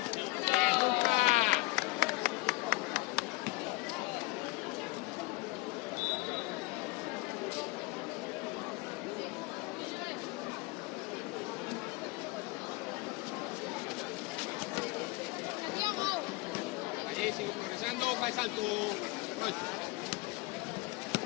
Luca. Allí sigo progresando, fa el salto. Roy.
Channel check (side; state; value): right; quieter; 23.0 dB